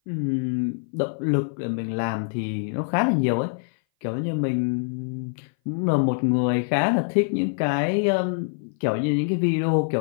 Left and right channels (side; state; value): right; silent; 58 dB below the other